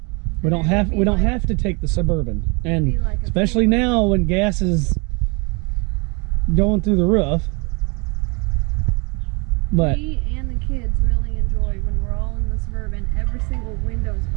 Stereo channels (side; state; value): left; quieter; 30.9 dB